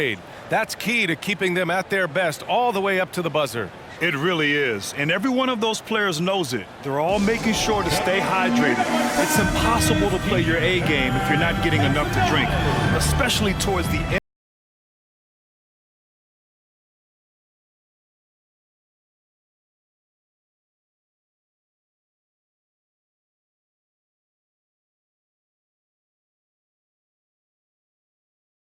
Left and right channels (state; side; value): identical; both; correlation 1.00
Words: That's key to keeping them at their best all the way up to the buzzer. It really is. And every one of those players knows it. They're all making sure to stay hydrated. It's impossible to play your A game if you're not getting enough to drink, especially towards the end.